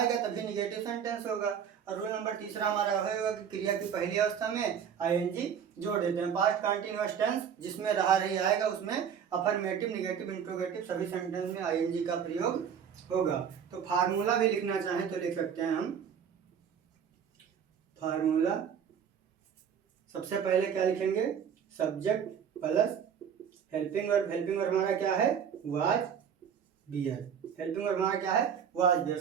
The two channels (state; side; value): quieter; left; 7.9 dB